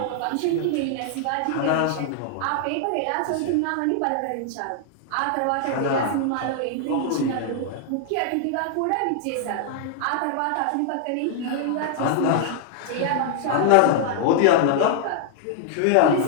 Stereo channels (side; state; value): both; different; correlation 0.00